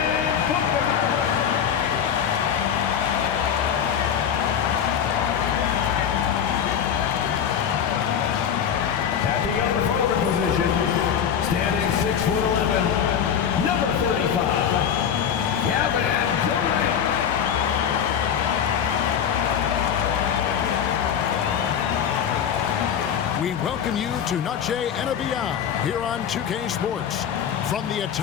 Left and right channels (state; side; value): quieter; right; 8.4 dB